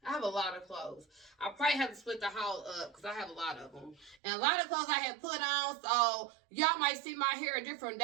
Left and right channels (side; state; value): left; drops out; at 4.2 s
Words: I have a lot of clothes. I probably have to split the haul up because I have a lot of them. And a lot of clothes I had put on, so y'all might see my hair a different